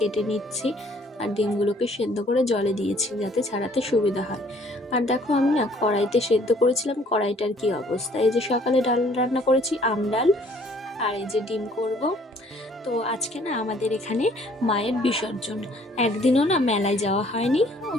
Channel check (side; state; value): both; normal; correlation 0.59